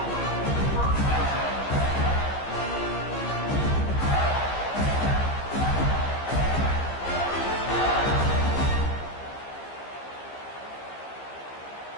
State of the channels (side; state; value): right; late; 15 ms